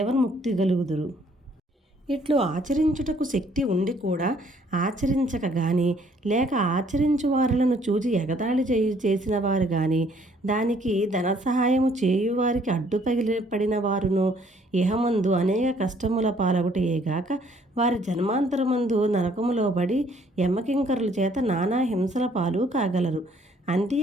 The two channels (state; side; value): normal; both; correlation 0.63